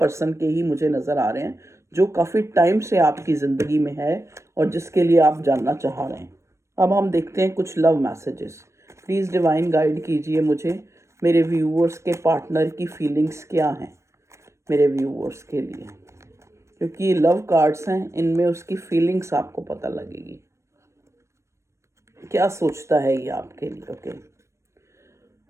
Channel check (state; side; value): late; left; 0.14 ms